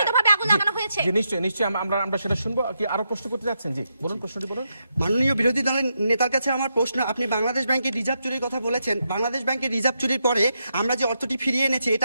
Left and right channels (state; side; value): inverted; both; correlation -0.83